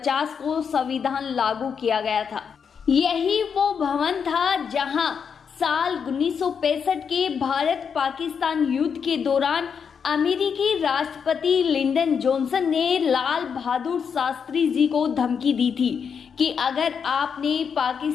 को संविधान लागू किया गया था। यही वो भवन था जहां साल 1965 के भारत पाकिस्तान युद्ध के दौरान अमेरिकी राष्ट्रपति लिंडन जॉनसन ने लाल बहादुर शास्त्री जी को धमकी दी थी कि अगर आपने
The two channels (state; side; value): quieter; right; 6.7 dB